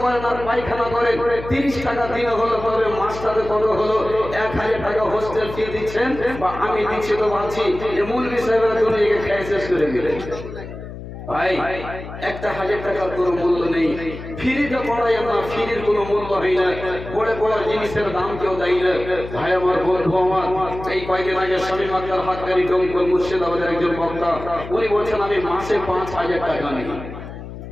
করেন আর পায়খানা করেন 30 টাকা দিনে হলো, তবে মাসটাতে কত হলো? 1000 টাকা হোস্টেল ফি দিচ্ছেন বা আমি দিচ্ছি তো ভাবছি যে মৌলভী সাহেবের জন্য খেয়ে শেষ করে দিলেন। ভাই 1000 টাকার কোনো মূল্য নেই। ফ্রিতে পড়াই আমরা, ফ্রির কোনো মূল্য হয় না। পড়ে পড়ার জিনিসের দাম কেউ দেয় না। ভাই আমার বন্ধু আমার এই কয়েকদিন আগে স্বামী মাত্রার হাতকারী ডোমকল মুর্শিদাবাদের একজন বক্তা, উনি বলছেন আমি মাসে 5000 টাকা নিই।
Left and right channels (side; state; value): left; noise; hum, 12 dB below the sound